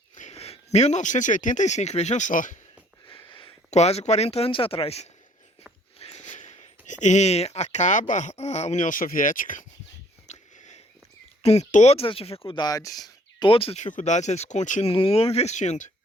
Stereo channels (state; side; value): normal; both; correlation 0.60